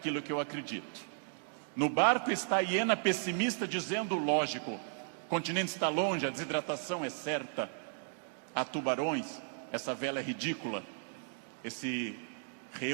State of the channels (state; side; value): silent; left; digital silence